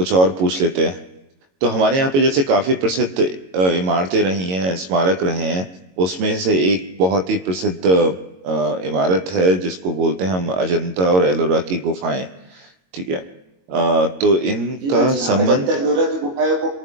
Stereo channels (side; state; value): left; late; 22 ms